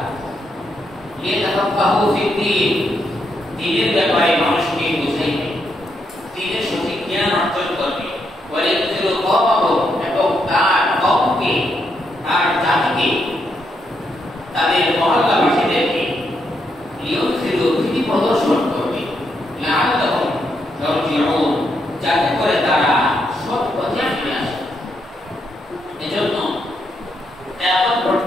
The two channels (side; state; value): both; normal; correlation 0.79